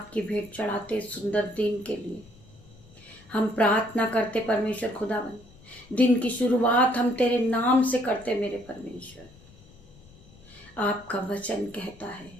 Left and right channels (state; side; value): noise; left; rumble, 24 dB below the sound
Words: की भेंट चढ़ाते सुंदर दिन के लिए। हम प्रार्थना करते परमेश्वर खुदावन, दिन की शुरुआत हम तेरे नाम से करते। मेरे परमेश्वर, आपका वचन कहता है